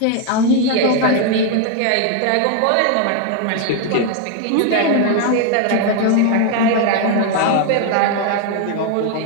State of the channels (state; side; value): different; both; correlation 0.01